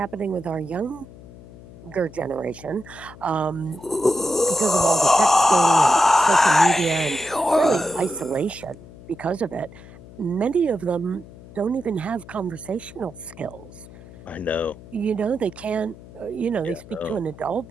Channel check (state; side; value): noise; left; hum, 19 dB below the sound